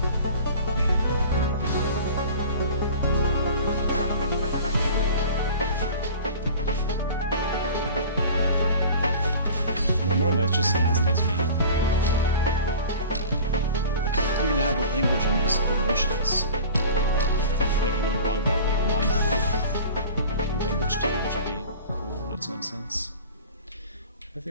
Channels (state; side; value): inverted; both; correlation -0.41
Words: That's just fast, that's me. You can have a language and just go motionless. Like I learn a lot about like non-verbal language too, which would be cool in its own sense. I